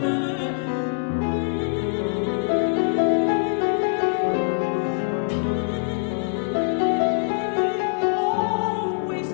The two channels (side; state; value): right; silent; digital silence